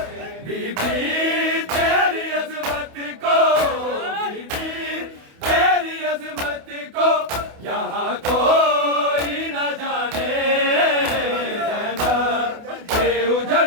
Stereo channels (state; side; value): late; left; 28 ms